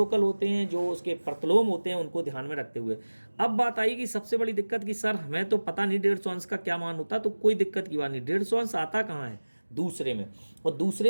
होते हैं, जो उसके प्रतिलोम होते हैं उनको ध्यान में रखते हुए। अब बात आई कि सबसे बड़ी दिक्कत कि सर हमें तो पता नहीं 150 अंश का क्या मान होता, तो कोई दिक्कत की बात नहीं। 150 अंश आता कहाँ है? दूसरे में। और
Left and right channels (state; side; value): inverted; both; correlation -1.00